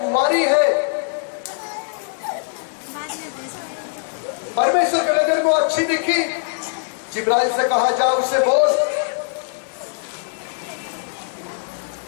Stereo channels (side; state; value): right; silent; digital silence